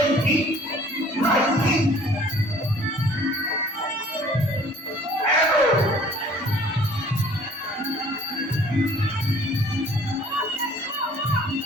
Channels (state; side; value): normal; both; correlation 0.54